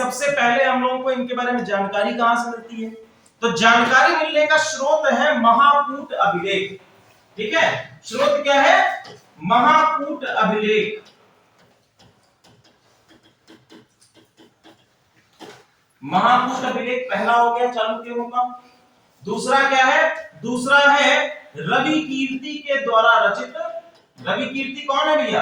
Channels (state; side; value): identical; both; correlation 1.00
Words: पहले हम लोगों को इनके बारे में जानकारी कहां से मिलती है? तो जानकारी मिलने का स्रोत है महाकूट अभिलेख। ठीक है, स्रोत क्या है? महाकूट अभिलेख। महाकूट अभिलेख पहला हो गया चालुक्यों का। दूसरा क्या है? दूसरा है रवि कीर्ति के द्वारा रचित। रवि कीर्ति कौन है